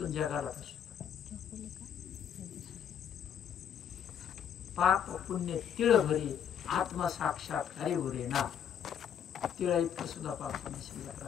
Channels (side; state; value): right; quieter; 8.8 dB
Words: जगाला फसतो. पाप पुण्य तिळ भरी आत्मा साक्षात हरी भरे ना. तिळा इतकं सुद्धा पाप पुण्य शिल्लक